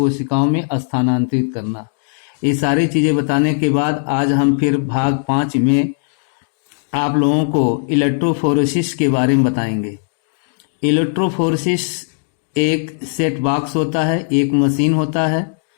में स्थानांतरित करना। ये सारी चीजें बताने के बाद आज हम फिर भाग 5 में आप लोगों को इलेक्ट्रोफोरेसिस के बारे में बताएंगे। इलेक्ट्रोफोरेसिस एक सेट बॉक्स होता है, एक मशीन होता है।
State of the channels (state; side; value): silent; right; digital silence